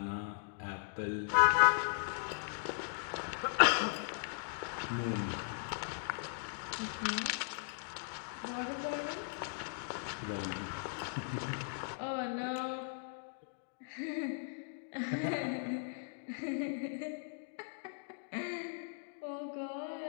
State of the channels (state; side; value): silent; right; digital silence